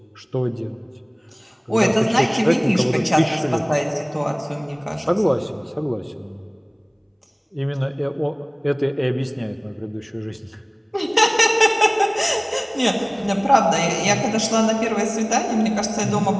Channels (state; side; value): identical; both; correlation 1.00